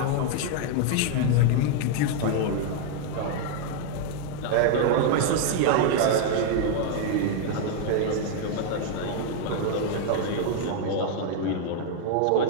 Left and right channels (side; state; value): both; different; correlation 0.00